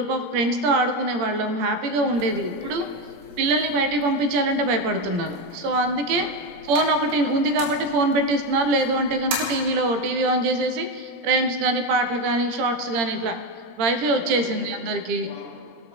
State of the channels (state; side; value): late; left; 17 ms